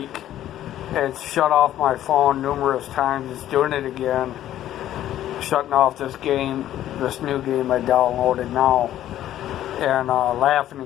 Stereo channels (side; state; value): right; quieter; 12.5 dB